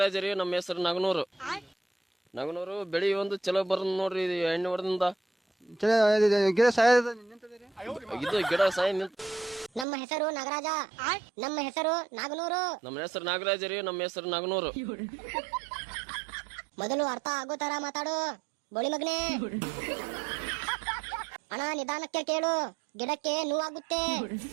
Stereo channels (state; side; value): drops out; left; at 9.9 s